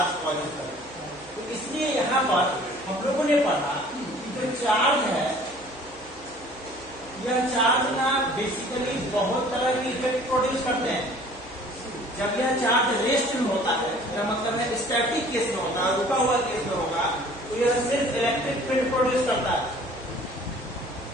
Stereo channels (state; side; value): noise; right; hum, 24 dB below the sound